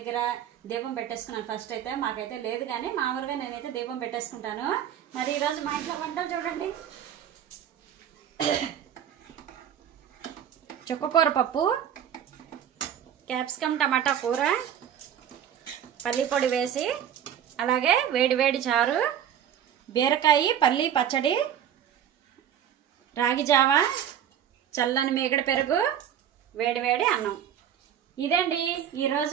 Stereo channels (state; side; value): quieter; left; 9.6 dB